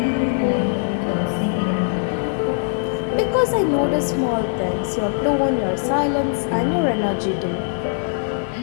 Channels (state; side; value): silent; right; 65 dB below the other